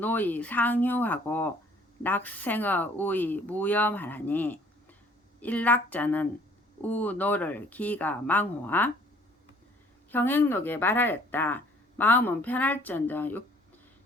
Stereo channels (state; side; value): normal; both; correlation 0.57